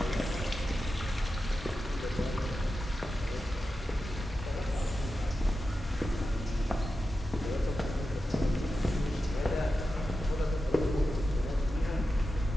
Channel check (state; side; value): normal; both; correlation 0.91